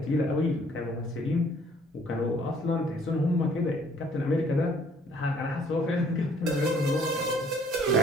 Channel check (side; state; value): both; normal; correlation 0.59